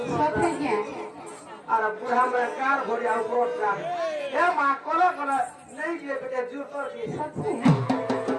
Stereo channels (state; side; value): identical; both; correlation 1.00